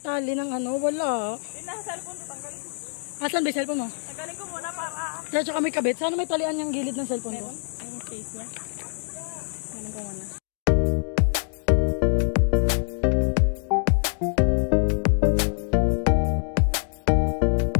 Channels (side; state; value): right; silent; digital silence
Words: ng ano, wala. Yung nasa cellphone ko, tanggalin ko. Asan ba yung cellphone mo? Tanggalin ko muna para... Kaya tsaka may kabit. Sana may talian yung gilid ng cellphone ko. Yung case niya. Tanggalin ko muna.